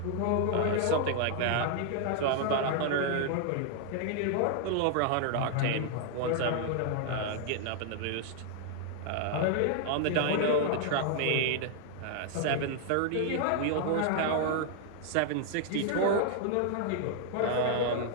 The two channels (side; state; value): both; different; correlation -0.01